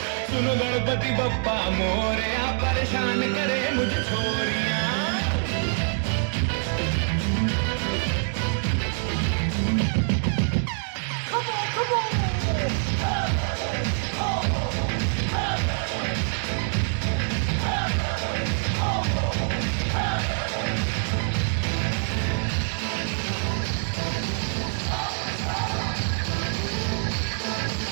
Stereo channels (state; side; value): silent; left; 61 dB below the other